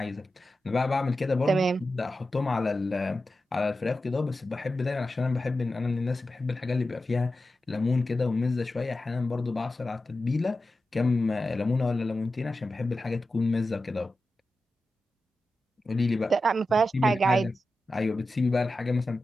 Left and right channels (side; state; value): both; normal; correlation 0.92